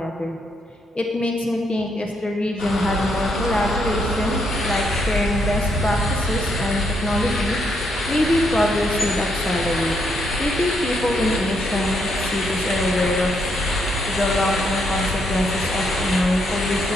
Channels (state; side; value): normal; both; correlation 0.76